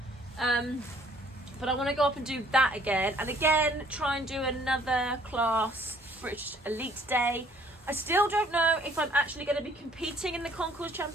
But I want to go up and do that again, and again try and do another class British Elite Day. I still don't know if I'm actually going to be competing in the Concourse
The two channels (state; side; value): normal; both; correlation 0.60